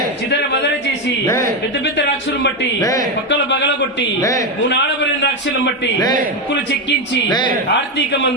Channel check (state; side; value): normal; both; correlation 0.09